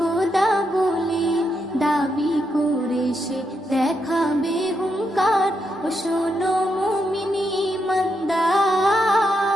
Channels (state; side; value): normal; both; correlation 0.81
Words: বলে দাবি করে সে দেখাবে হুঙ্কার। ও শোনো মুমিন ইমানদার,